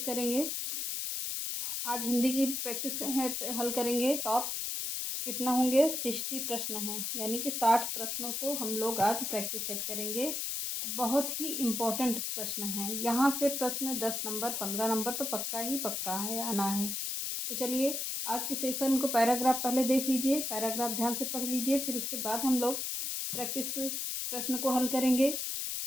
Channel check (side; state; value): left; noise; hiss, 2 dB below the sound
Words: करेंगे? आज हिंदी की प्रैक्टिस हल करेंगे। टॉप कितना होंगे? 60 प्रश्न हैं, यानी कि 60 प्रश्नों को हम लोग आज प्रैक्टिस सेट करेंगे। बहुत ही इम्पोर्टेंट प्रश्न हैं। यहाँ से प्रश्न 10 नंबर 15 नंबर तो पक्का ही पक्का है, आना है। तो चलिए आज के सेशन को पैराग्राफ पहले देख लीजिए, पैराग्राफ ध्यान से पढ़ लीजिए, फिर उसके बाद हम लोग प्रैक्टिस प्रश्न को हल करेंगे।